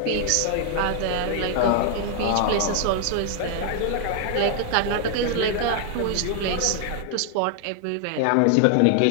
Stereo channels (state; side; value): different; both; correlation 0.00